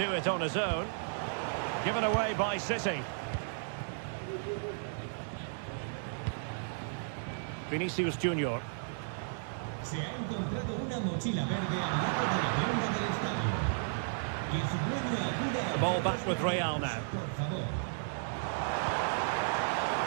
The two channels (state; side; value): silent; left; digital silence